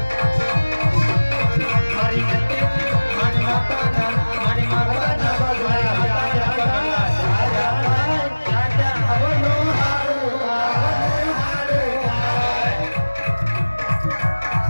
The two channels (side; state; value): both; inverted; correlation -1.00